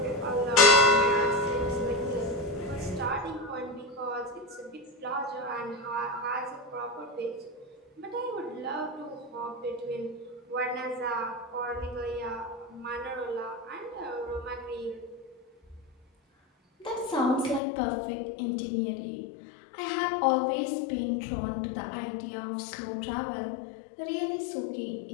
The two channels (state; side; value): drops out; right; at 17.6 s